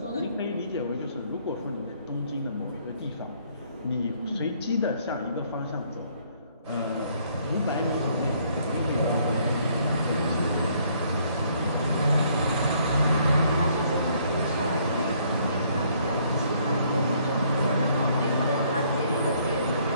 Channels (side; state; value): both; inverted; correlation -0.65